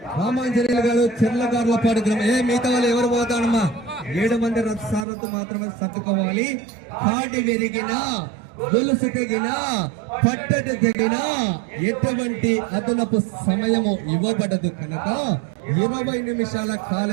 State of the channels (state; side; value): drops out; left; at 5.1 s